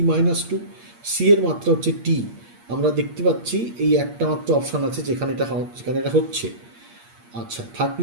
-2, সি এর মাত্রা হচ্ছে টি। আমরা দেখতে পাচ্ছি এই একটা মাত্র অপশান আছে যেখানে এটা হচ্ছে। আচ্ছা,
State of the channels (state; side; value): late; left; 8.5 ms